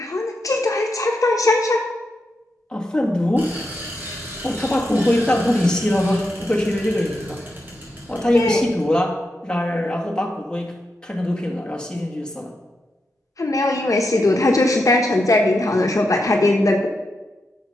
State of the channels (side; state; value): both; normal; correlation 0.85